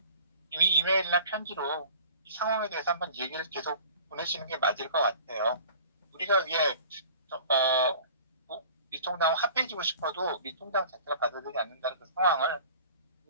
이미 이메일이나 편지로 이 상황에 대해서 한번 얘기를 계속 보내시는 게 맞을 것 같아요. 우리가 이게 미통당과 합해지고 싶어도 미통당 자체가 받아들이지 않는다는 그 상황을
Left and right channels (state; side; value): inverted; both; correlation -0.45